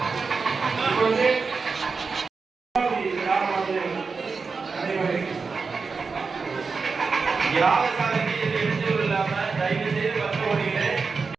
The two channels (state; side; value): quieter; left; 4.8 dB